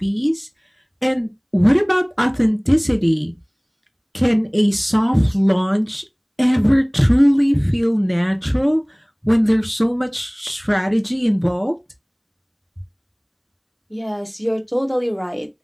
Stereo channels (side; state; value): both; identical; correlation 1.00